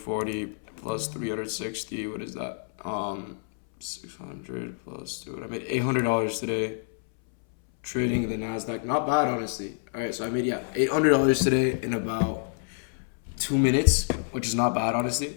plus 360. What is that? 600 plus 200. I made $800 today trading the Nasdaq. Not bad, honestly. All right, so I made, $800 today in about 2 minutes, which is not bad, honestly.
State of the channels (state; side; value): silent; right; 60 dB below the other